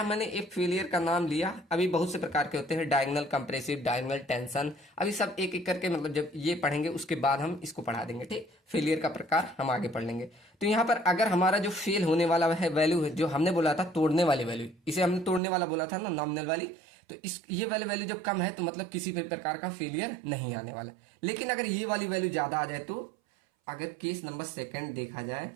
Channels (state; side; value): drops out; left; at 15.4 s